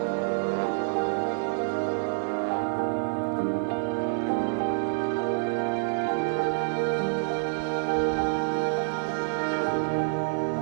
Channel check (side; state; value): left; silent; digital silence